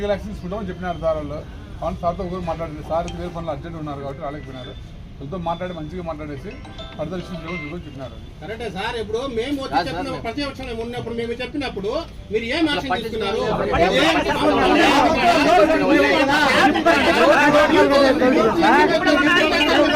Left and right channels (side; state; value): both; identical; correlation 1.00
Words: యాక్షన్ తీసుకుంటామని చెప్పినారు సార్ వాళ్ళు. అవును సార్తో ఒకరు మాట్లాడేది. సార్ వేరే పనులు అర్జెంట్ ఉన్నారు కాబట్టి రాలేకపోయినారు. వాళ్ళతో మాట్లాడి మంచిగా మాట్లాడేసి ఫర్దర్ ఇష్యూస్ చూడని చెప్పినారు. కరెక్టే సార్. ఇప్పుడు మేము వచ్చి చెప్పిన ప్రతిపక్షంలో ఉన్నప్పుడు మేము చెప్పినప్పుడు మీరు ఏం యాక్షన్ తీసుకున్నారు?